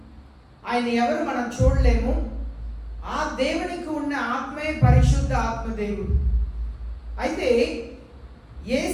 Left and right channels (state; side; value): identical; both; correlation 1.00